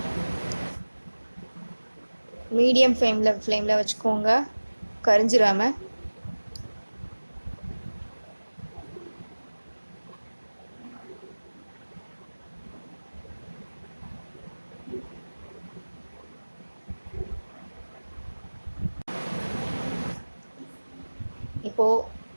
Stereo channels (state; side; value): inverted; both; correlation -1.00